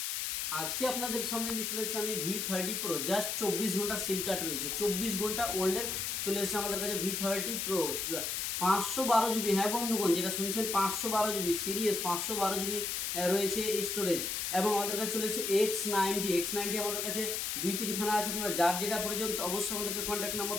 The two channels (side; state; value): left; noise; hiss, 1 dB below the sound